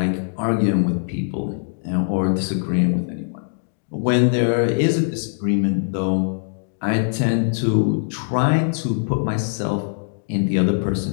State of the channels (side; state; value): right; silent; digital silence